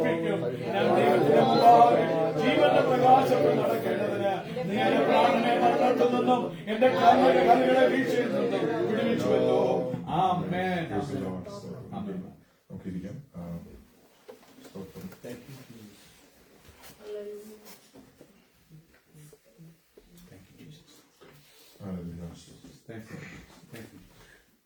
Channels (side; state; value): both; identical; correlation 1.00